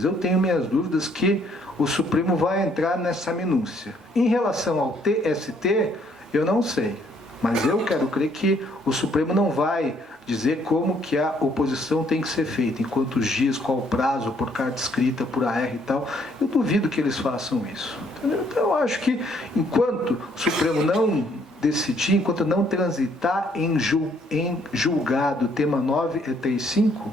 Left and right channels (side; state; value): both; normal; correlation 0.66